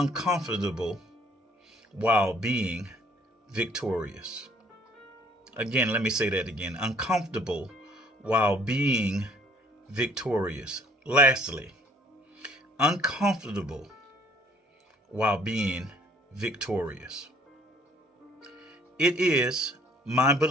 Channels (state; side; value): normal; both; correlation 0.59